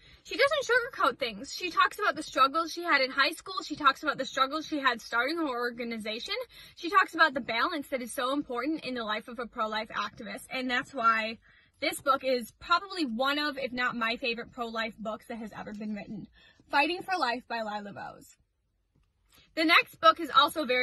She doesn't sugarcoat things. She talks about the struggles she had in high school. She talks about the struggles she had starting her organization. She talks about the balance that is so important in the life of a pro-life activist. And that's why this book is probably one of, if not my favorite pro-life books that has ever been written. Fighting for Life by Lila Rose. The next book is also a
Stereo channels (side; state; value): both; identical; correlation 1.00